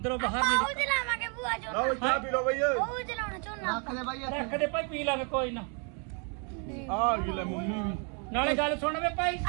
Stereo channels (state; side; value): quieter; left; 37.5 dB